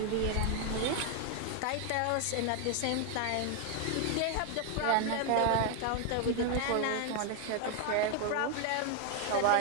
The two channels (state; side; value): different; both; correlation 0.00